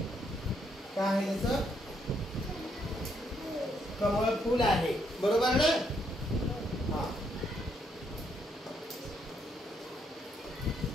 काय आहे? त्याचं कमळ फूल आहे, बरोबर ना? हा।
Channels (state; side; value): normal; both; correlation 0.74